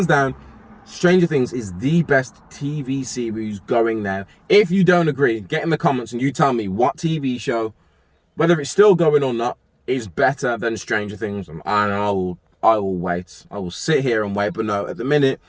down, Stranger Things is the best TV series going now. If you don't agree, get in the comments and you tell me what TV show, whether it's still going or not, is better than Stranger Things, and I will wait. I will sit here and wait, but no, at the minute,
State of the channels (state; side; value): identical; both; correlation 1.00